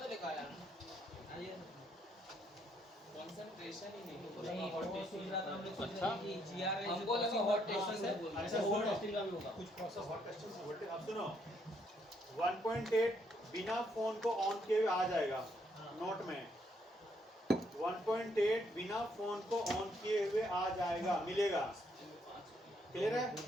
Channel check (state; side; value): normal; both; correlation 0.72